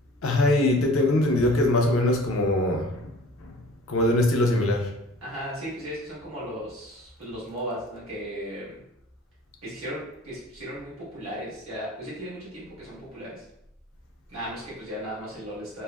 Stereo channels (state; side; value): normal; both; correlation 0.47